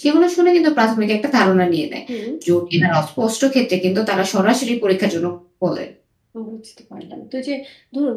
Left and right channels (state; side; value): identical; both; correlation 1.00